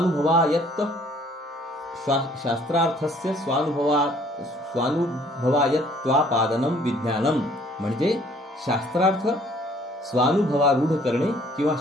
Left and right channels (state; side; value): normal; both; correlation 0.59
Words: स्वानुभवायत्वापादनम विज्ञानम म्हणजे शास्त्रार्थ स्वानुभवारूढ करणे किंवा